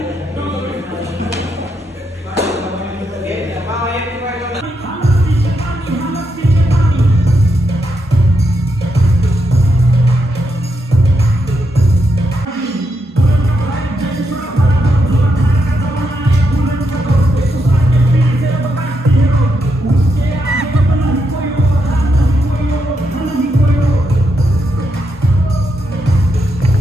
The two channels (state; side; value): normal; both; correlation 0.82